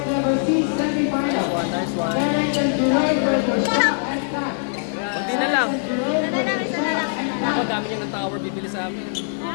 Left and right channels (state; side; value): silent; right; 64 dB below the other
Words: level C semifinal. Terence and Jerome versus Shaq and Pat. Hindi na lang. Isa na lang. Ako, dami niya ng tower bibili sa amin.